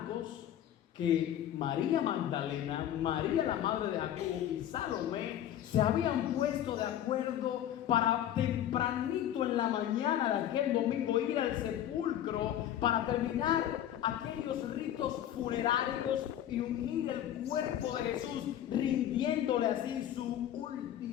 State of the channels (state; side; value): quieter; right; 11.3 dB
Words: que María Magdalena, María la madre de Jacobo y Salomé se habían puesto de acuerdo para tempranito en la mañana de aquel domingo ir al sepulcro para terminar aquellos ritos funerarios y unir el cuerpo de Jesús, rindiéndole así su